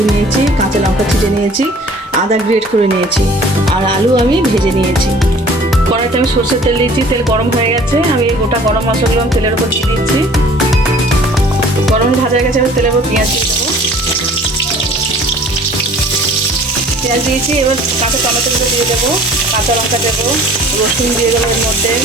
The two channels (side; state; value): both; normal; correlation 0.50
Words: নিয়েছি, কাঁচা লঙ্কা ছিটে নিয়েছি, আদা গ্রেট করে নিয়েছি, আর আলু আমি ভেজে নিয়েছি। কড়াইতে আমি সরষের তেল দিয়েছি, তেল গরম হয়ে গেছে। আমি এই গোটা গরম মশলাগুলো আমি তেলের উপর দিয়ে দিচ্ছি। গরম ভাজা হয়ে গেছে, আমি তেলের উপর পেঁয়াজ দিয়ে দেবো। পেঁয়াজ দিয়েছি, এবার কাঁচা টমেটোগুলো দিয়ে দেবো, কাঁচা লঙ্কা দেবো, রসুন দিয়ে দেবো এর মধ্যে,